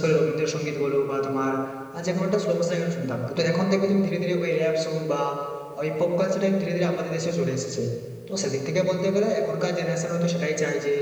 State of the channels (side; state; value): both; identical; correlation 1.00